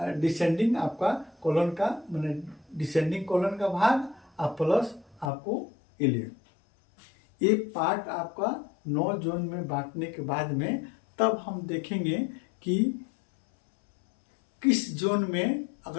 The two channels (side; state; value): right; drops out; at 5.3 s